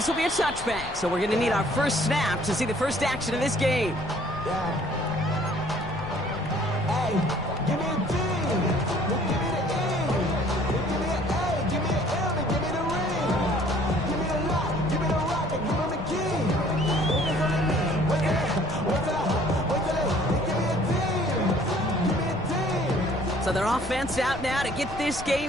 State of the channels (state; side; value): noise; left; rumble, 14 dB below the sound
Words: will be a touchback, so we're going to need our first snap to see the first action of this game. So their offense out now to get this